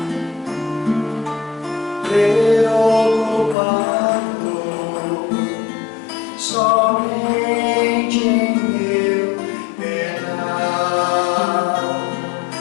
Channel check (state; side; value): drops out; right; at 3.6 s